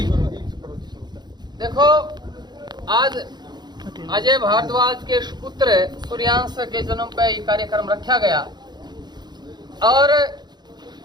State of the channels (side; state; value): left; late; 0.21 ms